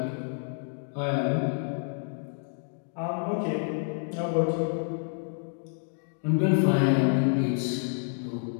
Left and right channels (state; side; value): silent; right; 59 dB below the other